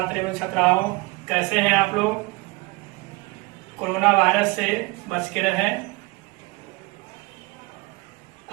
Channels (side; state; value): left; quieter; 24.3 dB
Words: एवं छात्राओं, कैसे हैं आप लोग। कोरोना वायरस से बच के रहें।